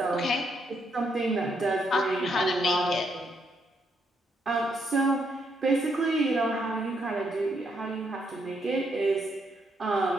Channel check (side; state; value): both; normal; correlation 0.76